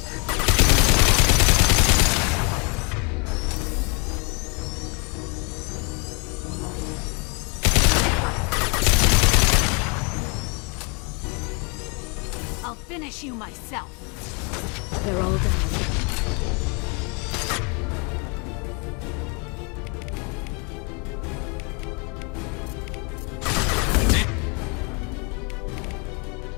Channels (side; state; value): right; quieter; 33.4 dB